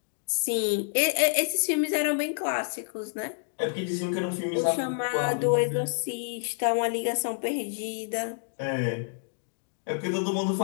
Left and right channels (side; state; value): right; silent; digital silence